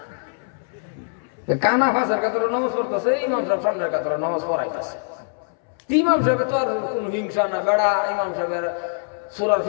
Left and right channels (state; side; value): silent; right; 63 dB below the other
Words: কানা ফাঁসের কাতরে নামাজ পড়তেছে, ইমাম সাহেব সামনের কাতরে নামাজ পড়াইতেছে। ইমাম সাহেবের তো আর কোন হিংসা না বেড়া, ইমাম সাহেবের সূরার